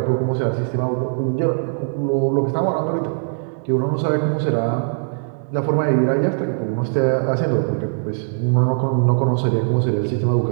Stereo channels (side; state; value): left; silent; digital silence